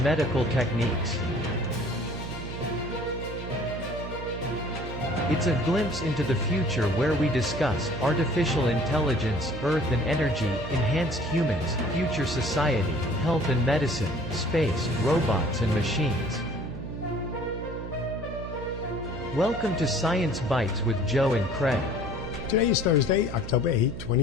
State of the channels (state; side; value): noise; right; hum, 8 dB below the sound